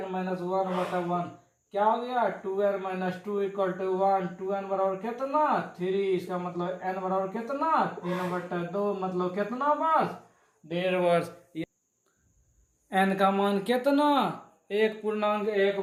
बटे 1 क्या हो गया 2n minus 2 equal to 1। 2n बराबर कितना 3, इसका मतलब n बराबर कितना 3/2, मतलब कितना वर्ष 1.5 वर्ष। n का मान कितना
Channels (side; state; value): both; identical; correlation 1.00